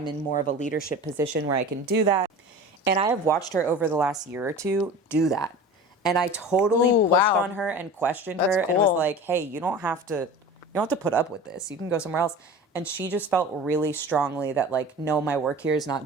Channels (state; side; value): normal; both; correlation 0.36